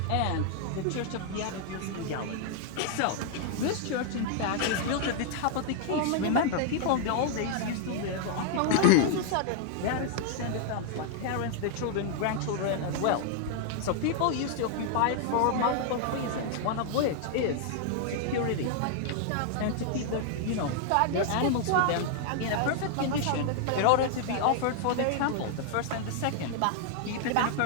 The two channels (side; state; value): both; different; correlation 0.00